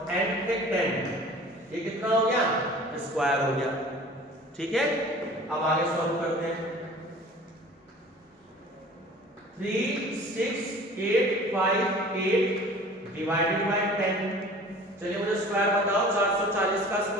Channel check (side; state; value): both; normal; correlation 0.45